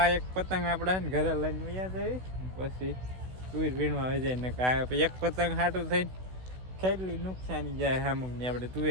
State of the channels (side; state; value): left; late; 16 ms